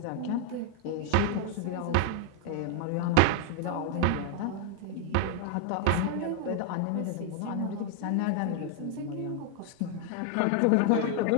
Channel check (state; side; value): different; both; correlation 0.00